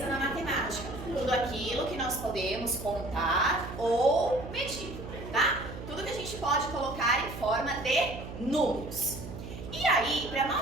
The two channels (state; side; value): noise; right; hum, 10 dB below the sound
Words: na matemática? Tudo aquilo que nós podemos contar ou medir, tá? Tudo que a gente pode colocar em forma de números. E aí, para